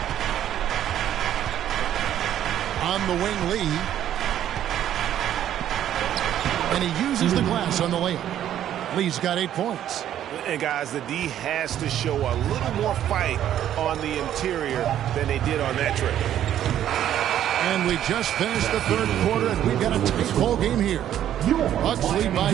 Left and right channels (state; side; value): quieter; left; 11.1 dB